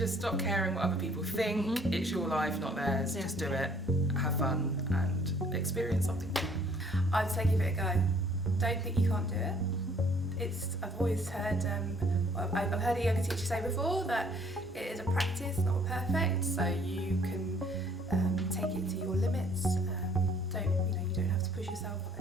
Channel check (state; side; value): normal; both; correlation 0.60